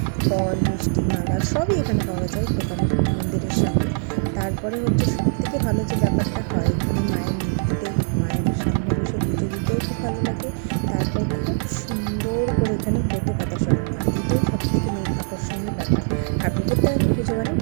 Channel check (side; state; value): left; silent; 64 dB below the other